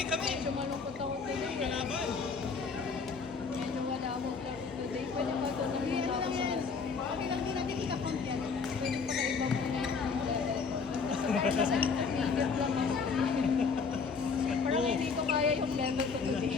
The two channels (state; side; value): quieter; right; 5.2 dB